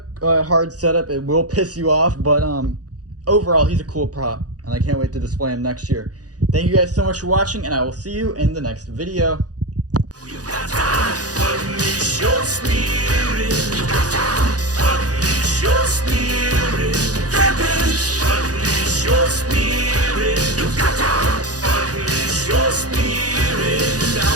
a hard setup. It will piss you off, but overall, he's a cool prop. And I can't wait to display him next year. Thank you guys so much for watching, and I will see you in the next video. Unleash your spirit. Unleash your spirit. Unleash your spirit. Unleash your spirit.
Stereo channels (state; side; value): late; left; 0.67 ms